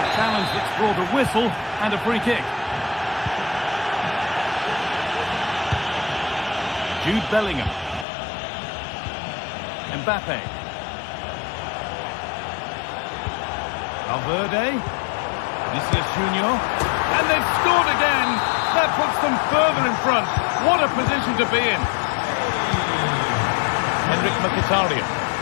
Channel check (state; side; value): drops out; right; at 8.1 s